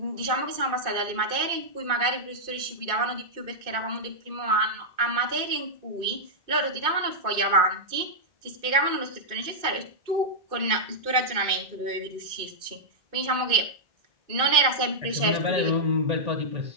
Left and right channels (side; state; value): left; late; 2.4 ms